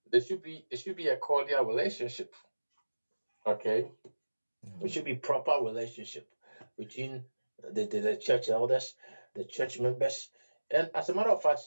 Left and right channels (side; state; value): both; inverted; correlation -1.00